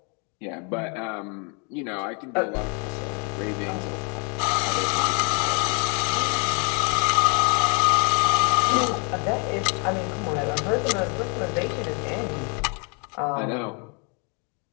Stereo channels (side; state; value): right; quieter; 35.8 dB